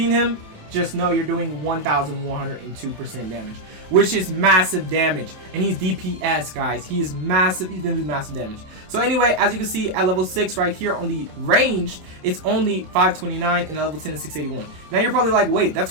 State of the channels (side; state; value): left; late; 27 ms